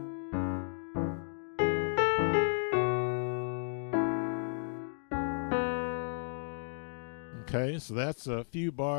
Okay, so that's a few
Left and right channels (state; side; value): silent; right; digital silence